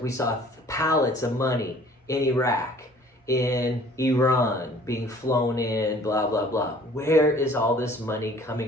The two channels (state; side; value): normal; both; correlation 0.53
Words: we saw pallets of money in Iraq, in Iran, being flown in, blah, blah, blah. Where is all this money